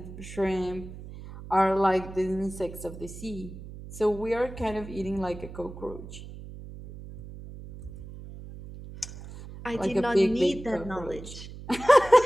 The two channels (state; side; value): noise; right; hum, 13 dB below the sound